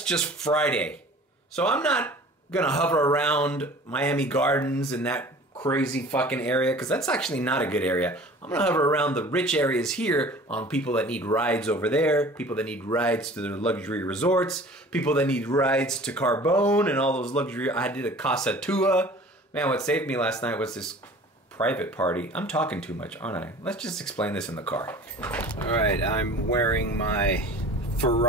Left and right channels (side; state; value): both; normal; correlation 0.45